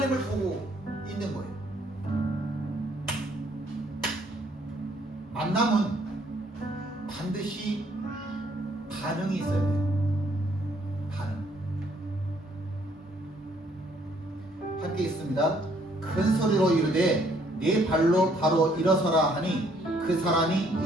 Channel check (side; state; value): both; normal; correlation 0.66